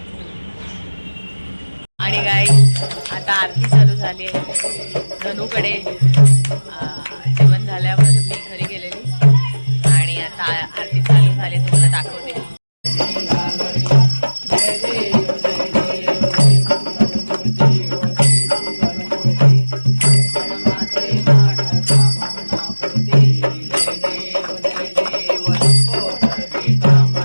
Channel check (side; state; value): both; inverted; correlation -1.00